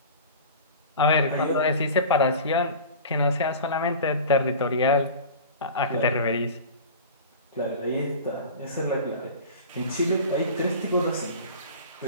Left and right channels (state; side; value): inverted; both; correlation -0.36